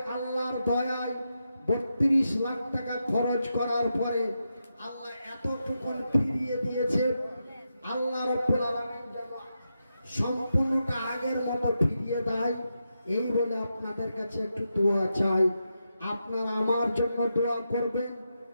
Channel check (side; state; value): both; inverted; correlation -0.86